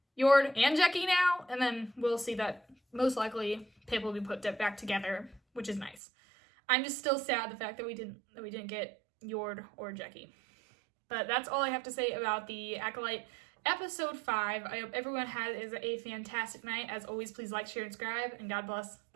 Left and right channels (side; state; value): left; drops out; at 6.0 s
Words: Yord, and Jackie now? And then we'll see that most likely Pip will be put back together, which is nice. I'm just still sad the fact that we didn't get Yord or Jackie. But that's all I have to say about the Acolyte Episode 5. I hope everyone has a fantastic night. As always, please like, share, and subscribe, and God bless.